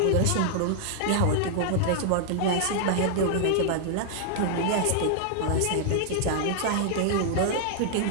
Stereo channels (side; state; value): both; different; correlation -0.01